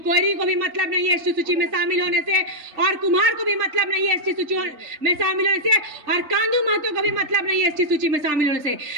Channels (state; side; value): late; left; 3.3 ms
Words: को भी मतलब नहीं है एसटी सूची में शामिल होने से, और कुम्हार को भी मतलब नहीं है एसटी सूची में शामिल होने से, और कांदू महतो को भी मतलब नहीं है एसटी सूची में शामिल होने से।